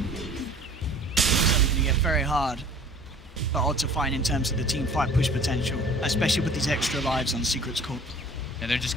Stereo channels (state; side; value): normal; both; correlation 0.49